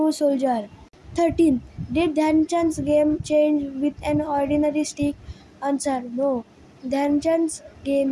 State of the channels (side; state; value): both; identical; correlation 1.00